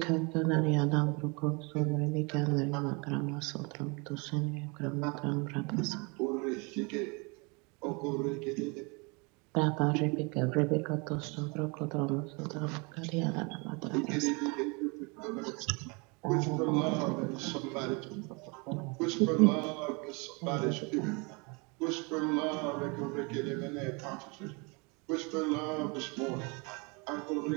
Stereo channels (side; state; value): left; quieter; 30.4 dB